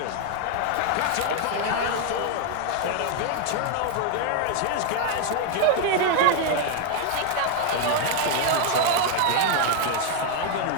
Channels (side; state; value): both; different; correlation 0.00